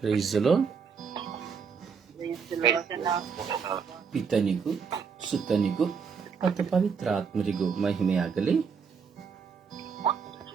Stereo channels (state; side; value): quieter; left; 6.1 dB